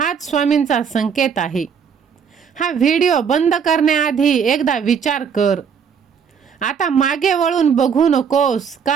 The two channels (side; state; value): left; quieter; 6.9 dB